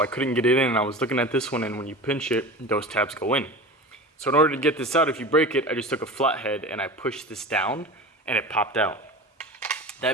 I couldn't get it in, and I was looking at this one, and when you pinch it, those tabs go in. So in order to get this out, if you break it, I just took a flathead and I pushed this down and it popped out.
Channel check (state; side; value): normal; both; correlation 0.33